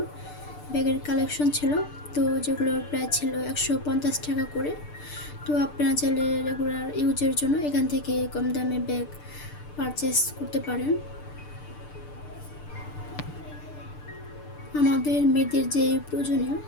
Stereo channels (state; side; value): late; right; 6.8 ms